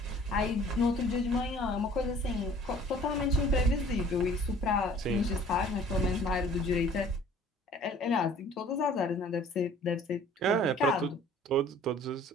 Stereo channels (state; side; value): normal; both; correlation 0.51